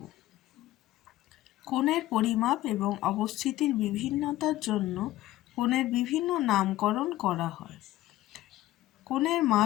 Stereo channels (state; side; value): quieter; right; 15.6 dB